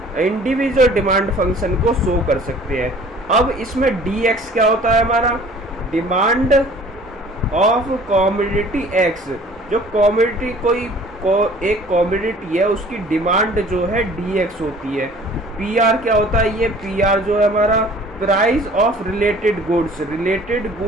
इंडिविजुअल डिमांड फंक्शन को शो कर सकते हैं। अब इसमें dx क्या होता है, हमारा डिमांड ऑफ कमोडिटी x। जो कमोडिटी एक कमोडिटी है उसकी डिमांड जो है dx होती है। pr क्या होता है, ये pr जो है हमारा प्राइस ऑफ रिलेटेड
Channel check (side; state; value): both; normal; correlation 0.50